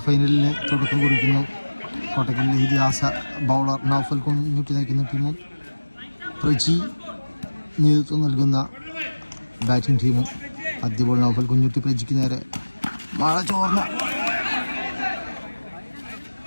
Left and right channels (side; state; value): both; inverted; correlation -1.00